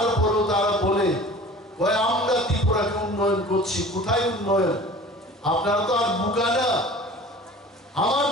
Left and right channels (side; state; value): both; normal; correlation 0.42